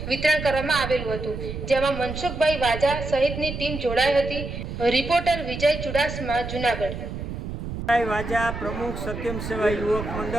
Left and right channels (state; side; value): noise; right; rumble, 7 dB below the sound